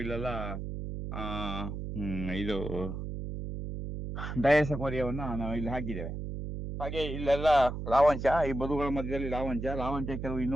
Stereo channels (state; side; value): noise; right; hum, 6 dB below the sound